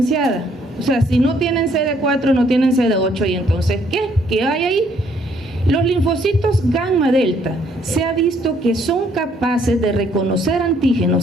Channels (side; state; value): both; normal; correlation 0.66